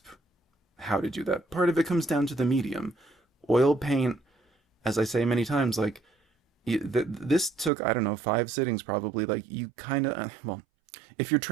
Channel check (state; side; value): drops out; left; at 7.7 s